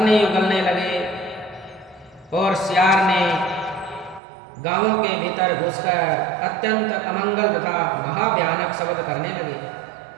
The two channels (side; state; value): left; drops out; at 4.2 s